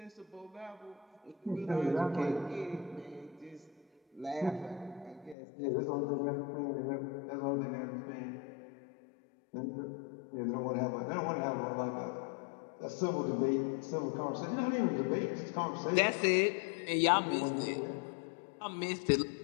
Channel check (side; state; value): right; drops out; at 5.4 s